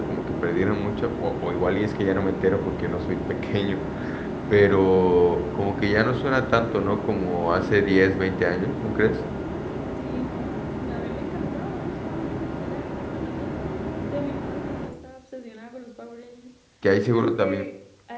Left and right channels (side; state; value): both; identical; correlation 1.00